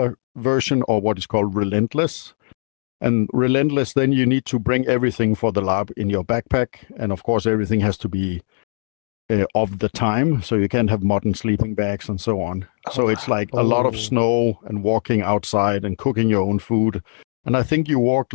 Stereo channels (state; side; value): silent; right; digital silence